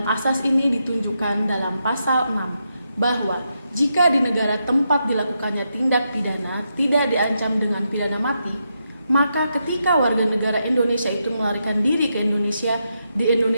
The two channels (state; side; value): inverted; both; correlation -0.83